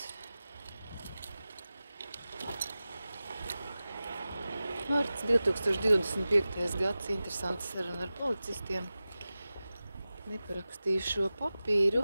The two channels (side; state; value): both; inverted; correlation -0.95